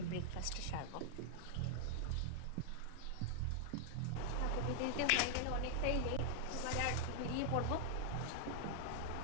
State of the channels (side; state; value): both; different; correlation -0.01